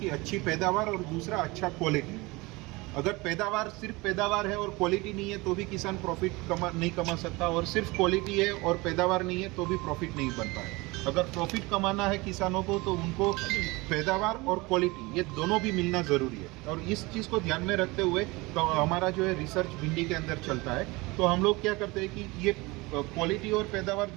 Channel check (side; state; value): left; quieter; 23.5 dB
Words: अच्छी पैदावार और दूसरा अच्छा क्वालिटी। अगर पैदावार सिर्फ पैदावार है और क्वालिटी नहीं है तो भी किसान प्रॉफिट नहीं कमा सकता, और सिर्फ क्वालिटी है और पैदावार नहीं है तो भी प्रॉफिट नहीं बन पाए। अगर प्रॉफिट कमाना है किसानों को तो उनको पैदावार और क्वालिटी ये दोनों भी मिलना ज़रूरी है। और इस चीज़ को ध्यान में रखते हुए तो हमारा जो है रिसर्च भिंडी के अंदर चलता है। तो हम लोग क्या करते हैं कि ये क्वालिटी और पैदावार